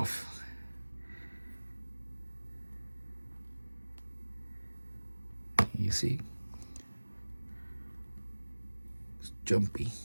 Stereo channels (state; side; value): inverted; both; correlation -1.00